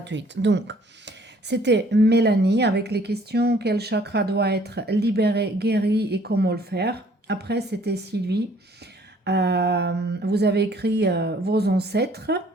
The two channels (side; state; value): both; normal; correlation 0.59